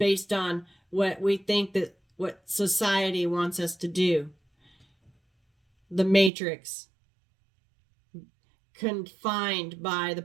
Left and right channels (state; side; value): drops out; left; at 6.3 s